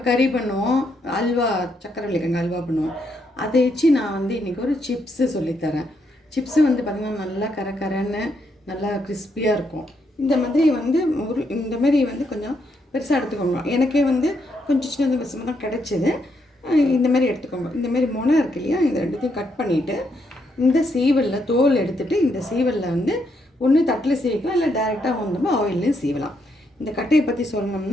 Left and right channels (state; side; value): normal; both; correlation 0.77